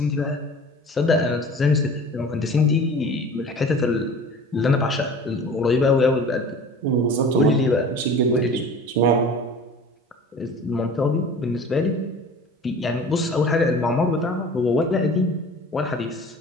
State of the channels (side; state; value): both; normal; correlation 0.41